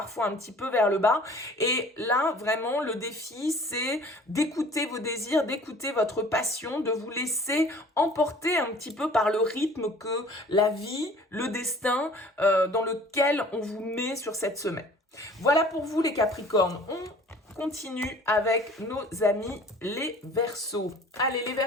un petit peu vers le bas. Et là, vraiment, le défi, c'est d'écouter vos désirs, d'écouter votre passion, de vous laisser emporter un petit peu par le rythme que la vie, le destin dans lequel on vous met sur cette semaine. Voilà pour vous les Capricornes. On continue avec nos amis les Verseaux. Allez les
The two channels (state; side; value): normal; both; correlation 0.49